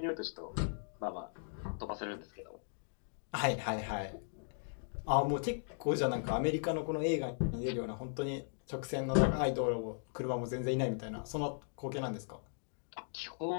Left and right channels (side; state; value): right; silent; digital silence